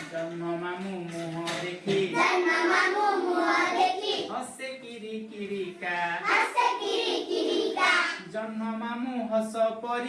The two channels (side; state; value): both; identical; correlation 1.00